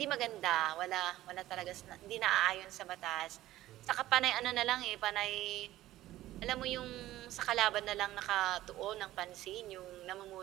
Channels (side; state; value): left; quieter; 15.1 dB